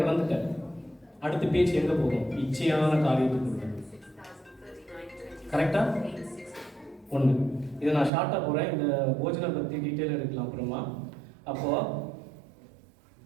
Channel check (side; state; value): left; drops out; at 8.1 s